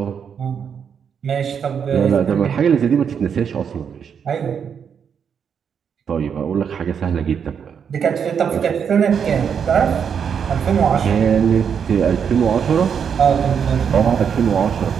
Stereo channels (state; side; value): quieter; left; 7.3 dB